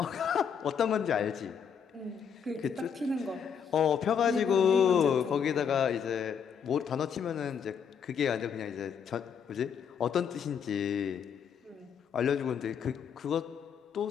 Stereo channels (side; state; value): right; quieter; 7.3 dB